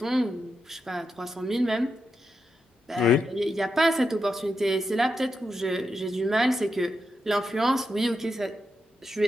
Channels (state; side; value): normal; both; correlation 0.86